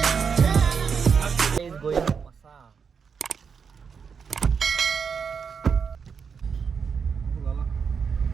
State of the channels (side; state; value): left; quieter; 6.2 dB